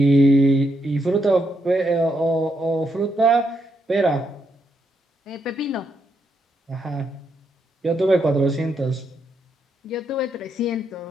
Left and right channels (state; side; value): normal; both; correlation 0.79